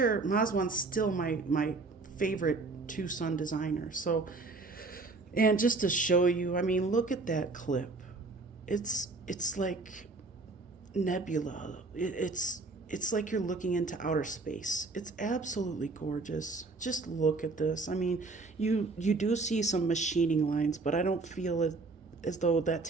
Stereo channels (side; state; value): left; quieter; 3.7 dB